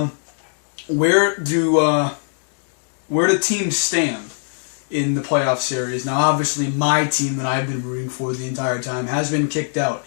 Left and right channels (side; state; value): right; silent; digital silence